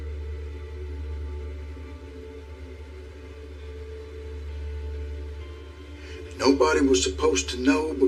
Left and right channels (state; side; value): identical; both; correlation 1.00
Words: Nobody was supposed to know